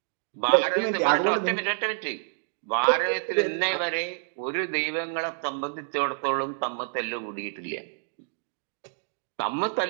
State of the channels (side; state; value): left; silent; digital silence